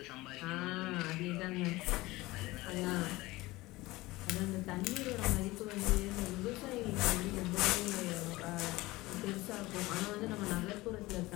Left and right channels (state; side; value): quieter; right; 20.0 dB